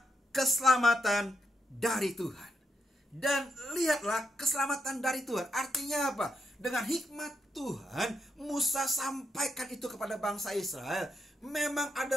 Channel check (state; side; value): normal; both; correlation 0.82